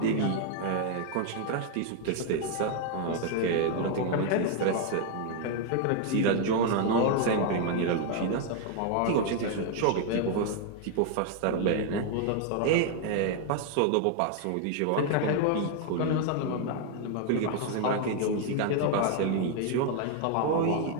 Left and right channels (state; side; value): different; both; correlation 0.00